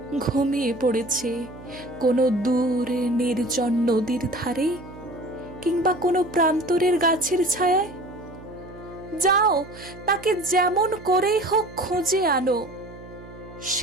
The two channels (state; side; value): noise; right; hum, 17 dB below the sound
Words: ঘুমিয়ে পড়েছে কোনো দূর নির্জন নদীর ধারে কিংবা কোনো প্রান্তরের গাছের ছায়ায়? যাও, তাকে যেমন করেই হোক খুঁজে আনো।